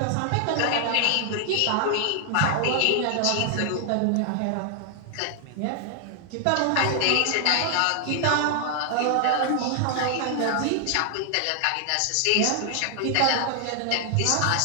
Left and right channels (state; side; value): different; both; correlation 0.00